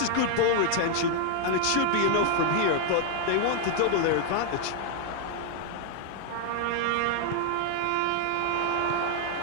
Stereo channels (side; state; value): both; different; correlation 0.00